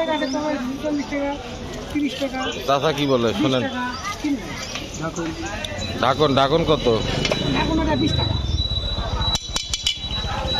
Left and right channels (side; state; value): both; identical; correlation 1.00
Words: গাছে তোমার 40 টাকা, 30 টাকা। চাচা কি বলে শোনেন? ঢাকন ঢাকন কত? এখন ওটা 20 টাকা।